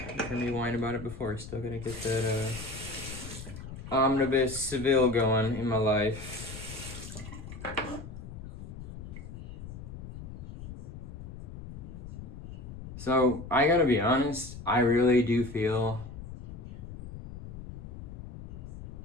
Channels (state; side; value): noise; left; rumble, 11 dB below the sound